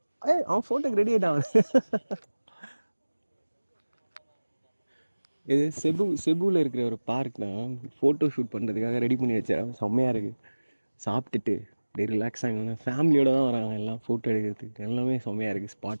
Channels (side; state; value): both; inverted; correlation -1.00